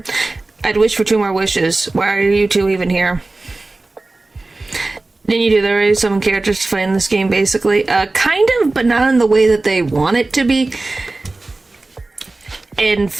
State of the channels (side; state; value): left; quieter; 3.2 dB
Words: I'd wish for 2 more wishes. Why are you 2 even here? Didn't you do there are some characters to fight in this game, basically? Kind of, but not in the way that they want it to be. And